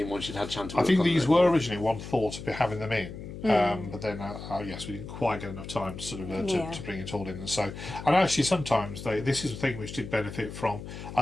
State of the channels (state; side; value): noise; left; hum, 11 dB below the sound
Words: once you'd had a chance to work I think on these it. were originally one thought of having them in. But then, yes, we didn't quite get enough time to to bring it all in, and actually sometimes this is a thing which did benefit from a